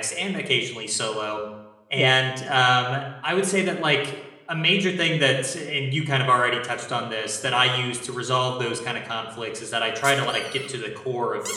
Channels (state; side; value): identical; both; correlation 1.00